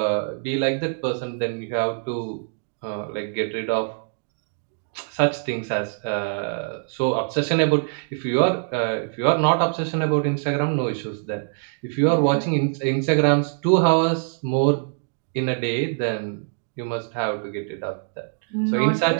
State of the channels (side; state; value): left; silent; digital silence